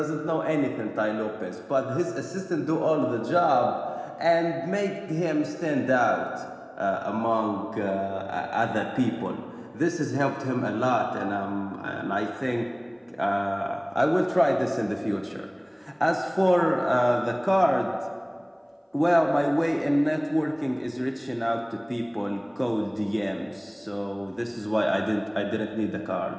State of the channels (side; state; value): both; identical; correlation 1.00